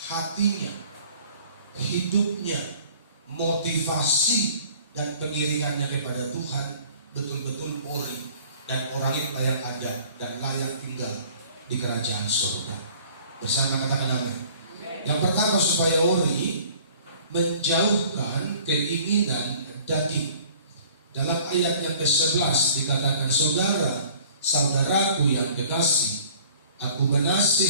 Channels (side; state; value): both; inverted; correlation -0.51